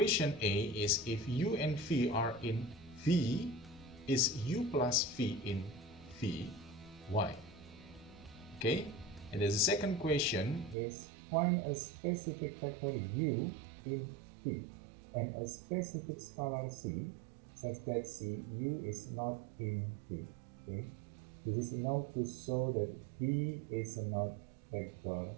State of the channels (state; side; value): drops out; left; at 10.8 s